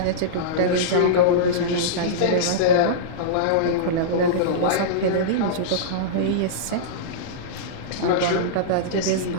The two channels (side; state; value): both; different; correlation -0.04